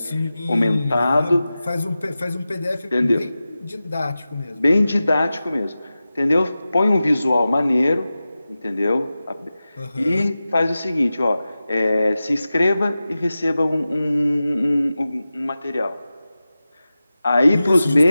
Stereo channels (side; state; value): both; inverted; correlation -0.95